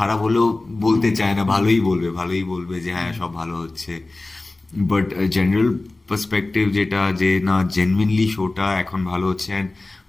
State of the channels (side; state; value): right; quieter; 3.1 dB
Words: হলেও বলতে চায় না, ভালোই বলবে যে হ্যাঁ সব ভালো হচ্ছে, বাট জেনারেল পার্সপেক্টিভ যেটা যে না জেনুইনলি শোটা এখন ভালো হচ্ছে, অ্যান্ড